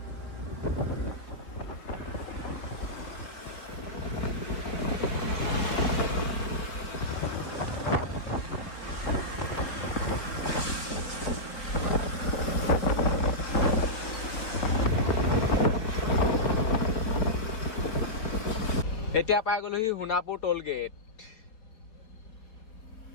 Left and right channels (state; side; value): late; right; 4.3 ms